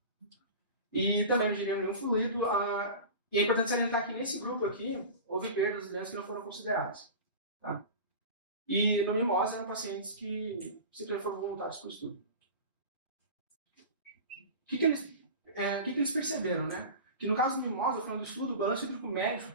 e também não ingeriam nenhum fluido. E é importante salientar que nesse grupo aqui houve perdas de que não foram consideradas. Tá? E no Mimose eram pacientes que simplesmente foram voluntários para o estudo. O que eles perceberam, né? Que no caso do Mimose, falando do estudo, o balanço hídrico médio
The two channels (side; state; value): both; inverted; correlation -0.32